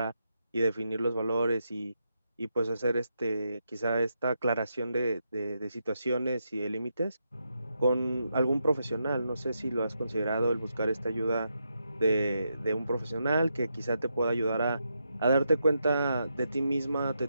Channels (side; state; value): both; inverted; correlation -0.83